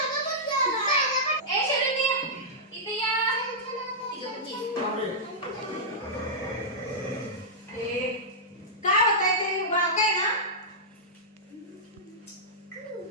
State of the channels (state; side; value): normal; both; correlation -0.11